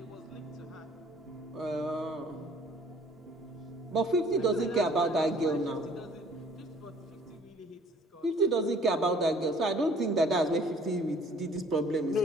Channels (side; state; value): both; normal; correlation 0.55